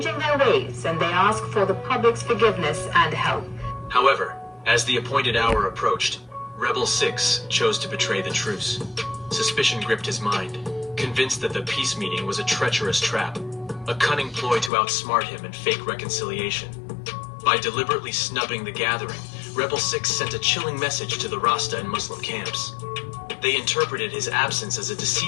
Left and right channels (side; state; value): right; drops out; at 14.7 s